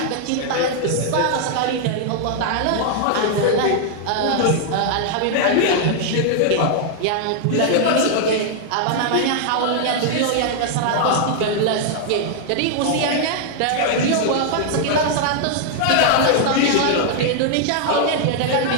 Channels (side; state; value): both; different; correlation -0.01